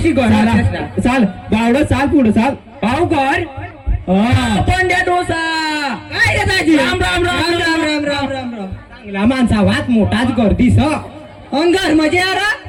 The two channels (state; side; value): identical; both; correlation 1.00